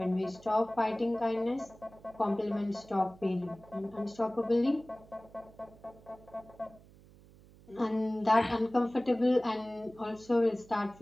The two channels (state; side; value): noise; right; hum, 23 dB below the sound